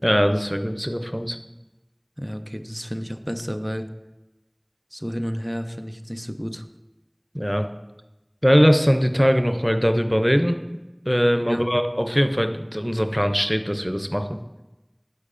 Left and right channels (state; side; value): identical; both; correlation 1.00